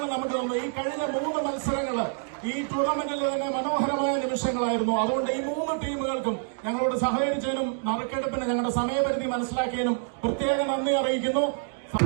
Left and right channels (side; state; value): left; silent; 60 dB below the other